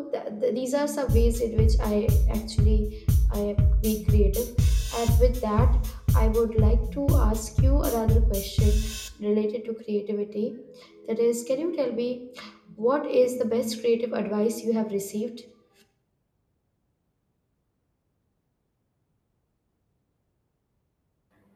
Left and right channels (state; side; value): identical; both; correlation 1.00